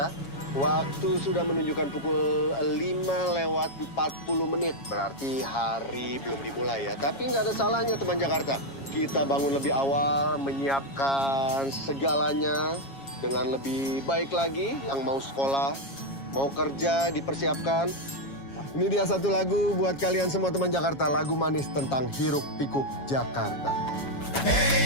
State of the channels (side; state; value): right; late; 7.3 ms